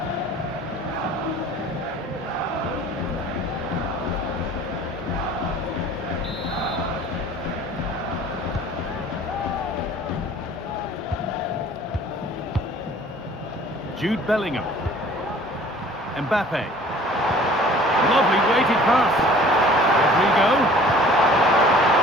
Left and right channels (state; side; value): normal; both; correlation 0.50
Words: Jude Bellingham. Mbappe. Lovely weighted pass. Rodrigo.